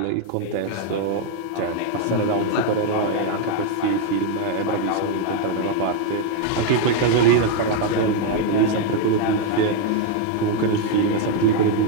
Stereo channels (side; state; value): both; different; correlation 0.01